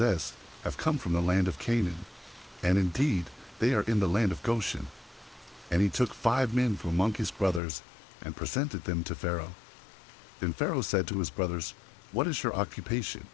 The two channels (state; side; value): drops out; right; at 7.6 s